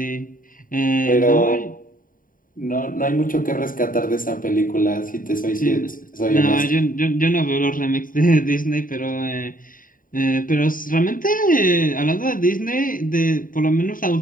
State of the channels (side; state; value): right; late; 0.40 ms